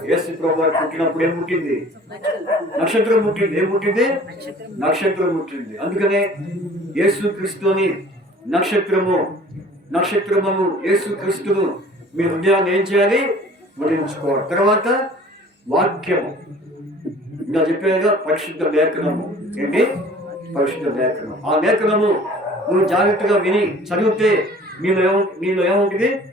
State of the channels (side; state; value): both; normal; correlation 0.49